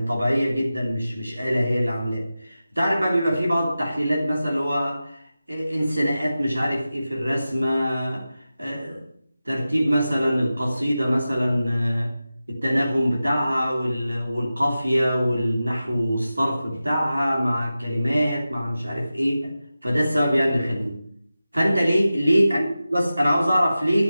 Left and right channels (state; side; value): inverted; both; correlation -0.94